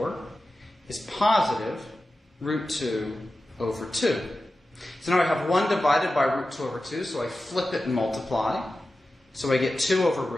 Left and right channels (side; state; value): both; normal; correlation 0.93